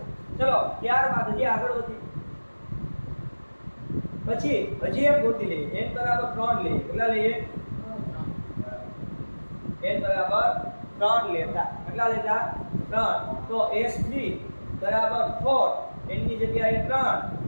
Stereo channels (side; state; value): both; inverted; correlation -1.00